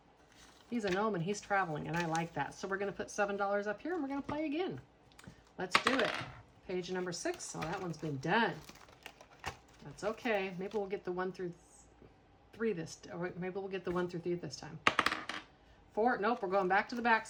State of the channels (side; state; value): both; identical; correlation 1.00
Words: he's a gnome and he's traveling, and I like that. So we're going to put $7 up here, and we're going to play again. Let's do it. Page number 6. Oh, that one's been done. That's okay. Maybe we'll get the 1 through 3 this, or maybe we'll get the 1 through 3 this time. 4, nope, we're going back to the back